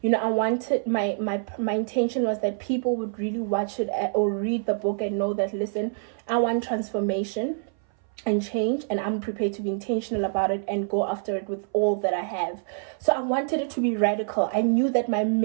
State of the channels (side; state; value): left; silent; 59 dB below the other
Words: You know, I wanted, my intention was that people would really watch it or read the book and know that, listen, I want transformation and change, and I'm prepared to be intentional about it and go after it with all that I have. So I wanted it to be radical. I knew that my